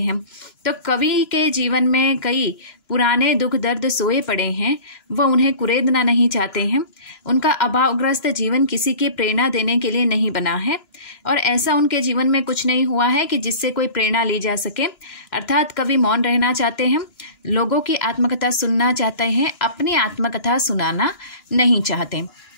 तो कवि के जीवन में कई पुराने दुख दर्द सोए पड़े हैं, वह उन्हें कुरेदना नहीं चाहते हैं। उनका अभावग्रस्त जीवन किसी की प्रेरणा देने के लिए नहीं बना है, और ऐसा उनके जीवन में कुछ नहीं हुआ है कि जिससे कोई प्रेरणा ली जा सके। अर्थात कवि मौन रहना चाहते हैं, लोगों की आत्मकथा सुनना चाहते हैं, अपनी आत्मकथा सुनाना नहीं चाहते।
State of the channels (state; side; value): late; right; 2.9 ms